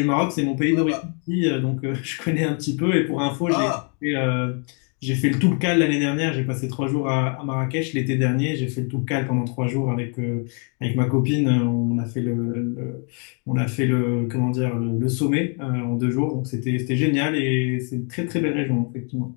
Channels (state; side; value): quieter; right; 39.7 dB